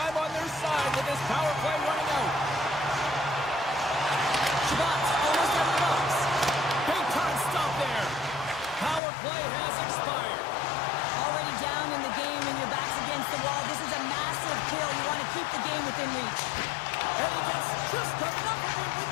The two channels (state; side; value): drops out; right; at 9.0 s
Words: on their side with this power play running out. Shabbat's almost out of the box. Big time stop there. Power play has expired. Already down in the game and your back's against the wall. This is a massive kill. You want to keep the game within reach. And he gets just enough of it with